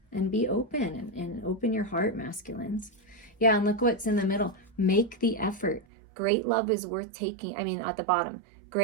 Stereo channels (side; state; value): left; drops out; at 5.9 s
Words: And be open and open your heart, masculines. Yeah, and look what's in the middle. Make the effort. Great love is worth taking. At the bottom,